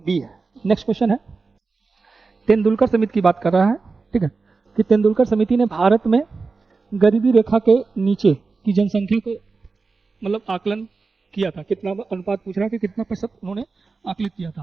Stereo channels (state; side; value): quieter; left; 4.2 dB